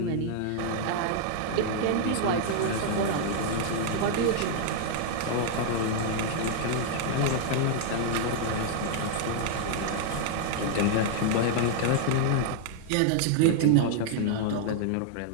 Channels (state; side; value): different; both; correlation 0.00